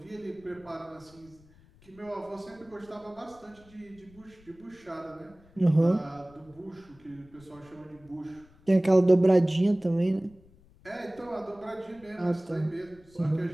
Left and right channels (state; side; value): noise; left; rumble, 27 dB below the sound